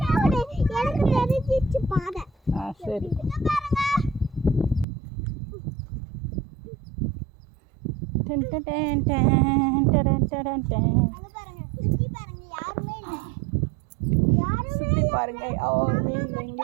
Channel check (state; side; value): drops out; left; at 4.9 s